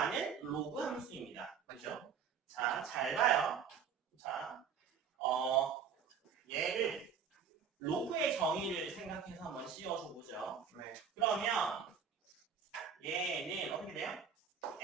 로그 함수입니다. 그죠? 자, 잘 봐요. 자, 얘를 로그의 정의를 생각해서 한번 씌워줘 보죠. 네. 그러면 얘는 어떻게 돼요?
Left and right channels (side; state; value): left; quieter; 7.0 dB